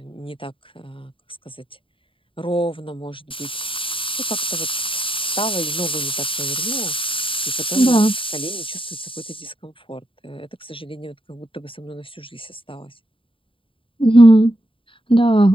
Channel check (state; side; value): late; right; 0.25 ms